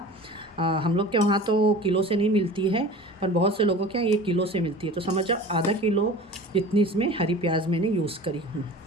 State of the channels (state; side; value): normal; both; correlation 0.39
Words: हम लोग के वहाँ तो किलो से नहीं मिलती है, पर बहुत से लोगों के यहाँ ये किलो से मिलती है। तो समझ जाओ आधा किलो जितनी इसमें हरी प्याज मैंने यूज़ करी हूँ,